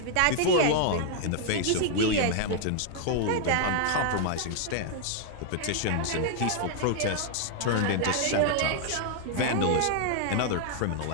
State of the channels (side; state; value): both; different; correlation 0.00